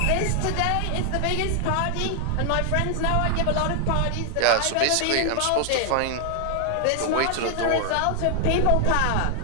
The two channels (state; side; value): different; both; correlation 0.00